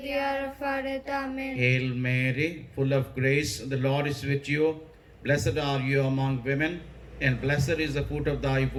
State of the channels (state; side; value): identical; both; correlation 1.00